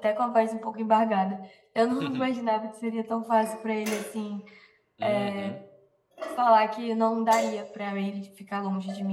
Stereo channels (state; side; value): identical; both; correlation 1.00